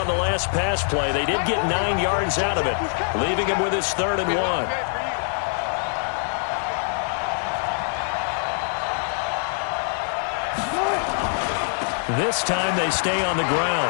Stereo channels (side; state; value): right; silent; 63 dB below the other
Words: the last pass play. They did get 9 yards out of it, leaving him with his 3rd and 1. This time they stay on the